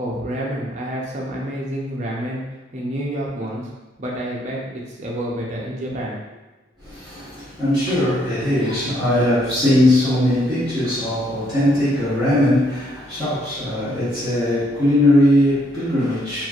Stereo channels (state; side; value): normal; both; correlation 0.71